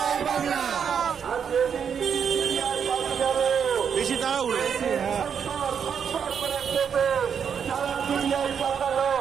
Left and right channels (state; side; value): quieter; left; 7.3 dB